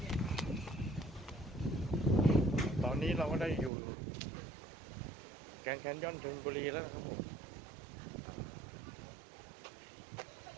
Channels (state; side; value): drops out; left; at 3.7 s